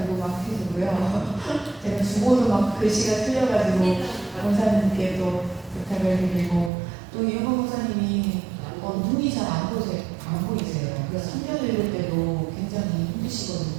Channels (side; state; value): left; drops out; at 6.7 s